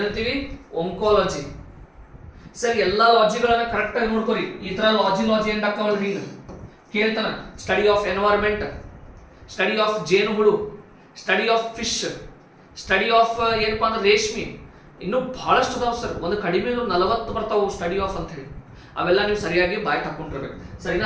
ಒಂಕಾಲಜಿ. ಸರ್, ಎಲ್ಲಾ ಲಾಜಿಗಳನ್ನ ಕರೆಕ್ಟ್ ಆಗಿ ನೋಡ್ಕೊರಿ. ಈ ತರ ಲಾಜಿ ಎಂಡ್ ಹಾಕವಲ್ರಿ. ಈಗ ಕೇಳ್ತಾನ study of environment, study of ಜೇನುಹುಳು, study of fish, study of ಏನಪ್ಪಾ ಅಂದ್ರೆ ರೇಷ್ಮೆ. ಇನ್ನೂ ಬಹಳಷ್ಟು ಅದಾವ ಸರ್. ಒಂದು ಕಡಿಮೆ 40 ಬರ್ತಾವು ಸ್ಟಡಿ ಆಫ್ ಅಂತ ಹೇಳಿ. ಅವೆಲ್ಲ ನೀವು ಸರಿಯಾಗಿ ಬಾಯ್ ಹಾಕೊಂಡಿರ್ಬೇಕು. ಸರಿನಾ?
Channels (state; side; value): identical; both; correlation 1.00